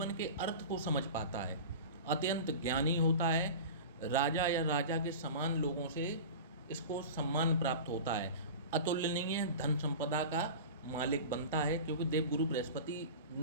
के अर्थ को समझ पाता है, अत्यंत ज्ञानी होता है, राजा या राजा के समान लोगों से इसको सम्मान प्राप्त होता है, अतुलनीय धन संपदा का मालिक बनता है, क्योंकि देवगुरु बृहस्पति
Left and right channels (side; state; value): both; inverted; correlation -0.32